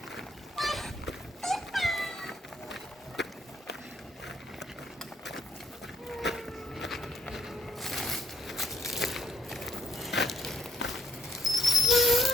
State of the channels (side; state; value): both; normal; correlation 0.69